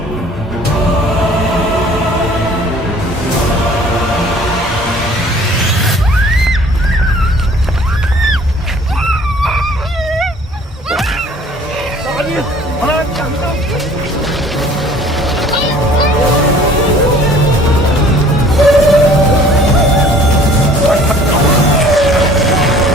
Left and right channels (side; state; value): both; normal; correlation 0.52